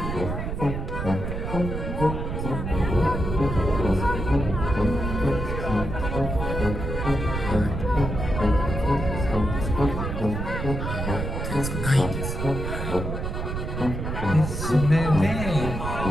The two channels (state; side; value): noise; right; rumble, 4 dB below the sound